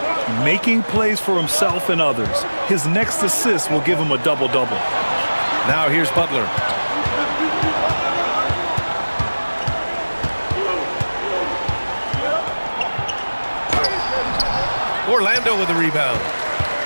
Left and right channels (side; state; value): both; inverted; correlation -1.00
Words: Making plays for himself and others. His next assist will give him a double-double. Now here's Butler. Orlando with the rebound.